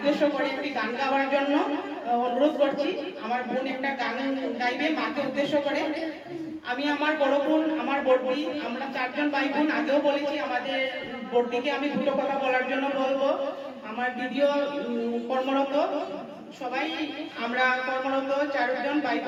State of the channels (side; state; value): both; identical; correlation 1.00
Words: করে একটি গান গাওয়ার জন্য অনুরোধ করছি। আমার বোন একটা গান গাইবে মাকে উদ্দেশ্য করে। আমি আমার বড় বোন, আমার বড়দি, আমরা চারজন ভাই বোন, আগেও বলেছি আমাদের বড়দিকে আমি দুটো কথা বলার জন্য বলবো। আমার দিদিও কর্মরত, সবাই আমরা কর্মরত চারজন ভাই